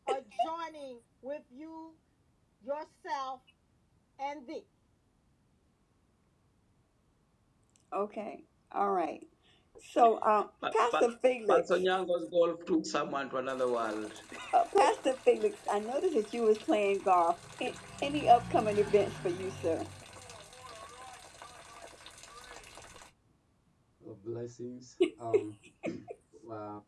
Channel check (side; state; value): both; identical; correlation 1.00